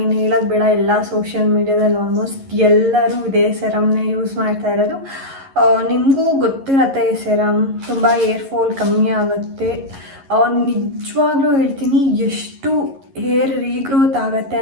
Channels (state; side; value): late; left; 11 ms